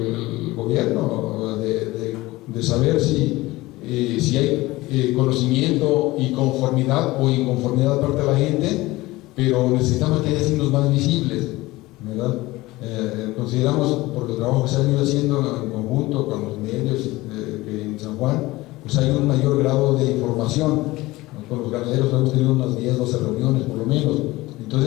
gobierno de saber si hay conocimiento y conformidad o inconformidad de parte de la gente, pero necesitamos que haya signos más visibles, ¿verdad? Consideramos, por el trabajo que se ha venido haciendo en conjunto con los medios que en San Juan, pues hay un mayor grado de información, ¿no? Con los ganaderos hemos tenido unas 10, 12 reuniones por lo menos.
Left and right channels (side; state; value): right; quieter; 19.5 dB